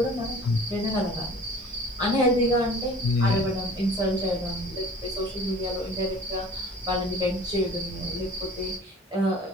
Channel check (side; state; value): both; normal; correlation 0.46